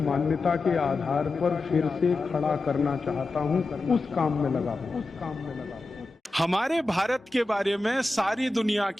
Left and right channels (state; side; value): quieter; right; 3.1 dB